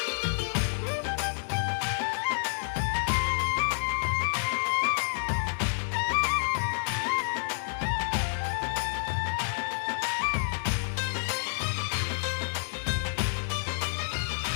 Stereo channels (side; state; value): right; silent; digital silence